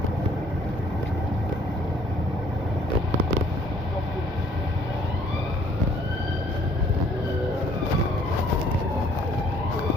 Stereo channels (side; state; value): both; normal; correlation 0.61